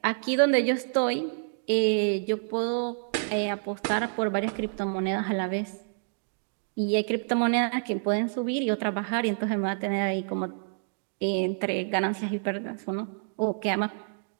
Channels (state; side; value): silent; left; digital silence